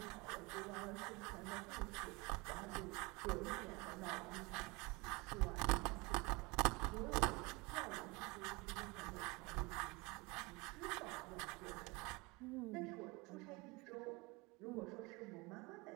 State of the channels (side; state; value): left; quieter; 25.6 dB